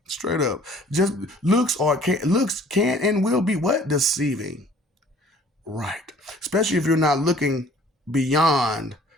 Straight up. Just looks can and will be what? Deceiving. Right. Especially if you're not looking beyond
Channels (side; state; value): both; normal; correlation 0.54